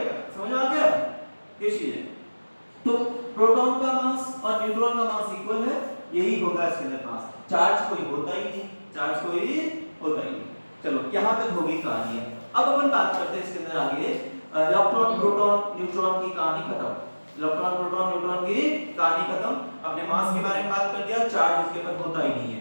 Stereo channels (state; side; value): inverted; both; correlation -1.00